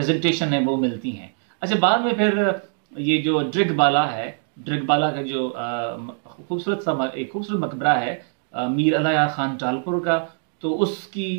है वो मिलती हैं। अच्छा, बाद में फिर ये जो ड्रिगबाला है, ड्रिगबाला का जो एक खूबसूरत मकबरा है मीर अलाया खान टालपुर का, तो उसकी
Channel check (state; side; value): silent; left; 64 dB below the other